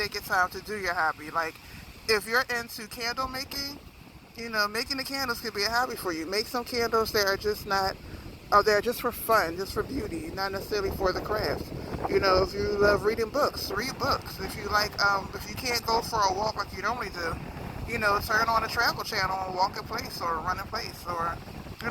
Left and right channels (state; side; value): identical; both; correlation 1.00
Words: your time to do your hobby. Like, if you're into candle making, making the candles could be a hobby for you. Make some candles that are just not, they're just for fun, just for beauty, not necessarily for the craft. If you love reading books, read books. If you if you can't go for a walk like you normally do, turn on a travel channel and walk in place or run in place, or,